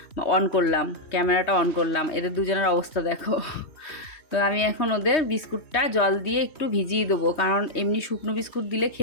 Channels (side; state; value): right; late; 3.2 ms